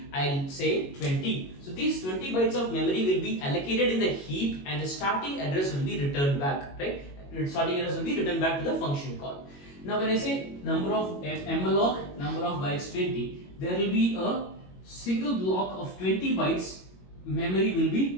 I'll say 20. So these 20 bytes of memory will be allocated in the heap and the starting address will be returned back, right? Starting address will be returned back to the function call. Now when I say number of malloc, number of bytes 20, there will be a single block of 20 bytes memory will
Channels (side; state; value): right; late; 22 ms